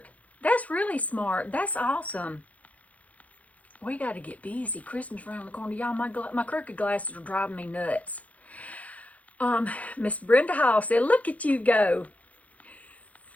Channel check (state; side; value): late; right; 0.069 ms